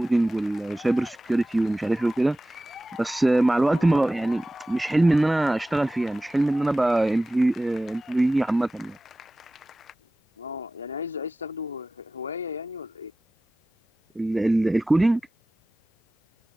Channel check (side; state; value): both; normal; correlation 0.96